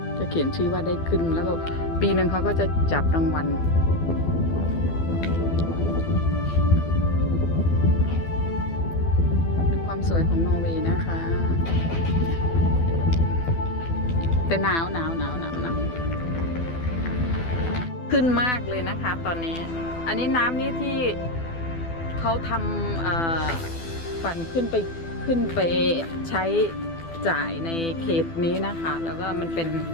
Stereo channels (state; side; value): late; right; 12 ms